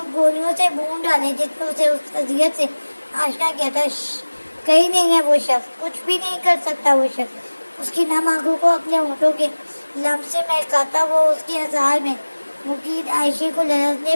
گولیوں سے بھون ڈالے جس نے اسے اس اذیت سے آشنا کیا تھا۔ کہیں نہیں ہے وہ شخص، کچھ بھی نہیں کر سکتا وہ شخص۔ اس کی نم آنکھوں کو اپنے ہونٹوں کے لمس سے مہکاتا وہ اس کے ہزار میں مقید عائشہ کو لرزنے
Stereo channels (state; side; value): inverted; both; correlation -1.00